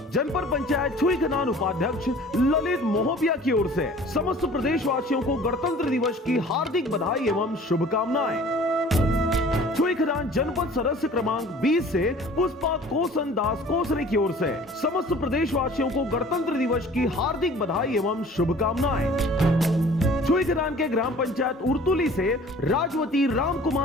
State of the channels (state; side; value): normal; both; correlation 0.48